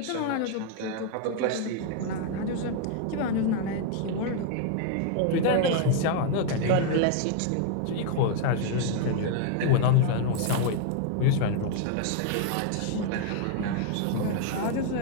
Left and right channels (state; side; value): different; both; correlation 0.00